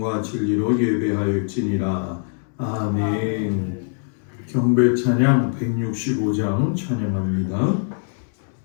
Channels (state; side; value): silent; right; 64 dB below the other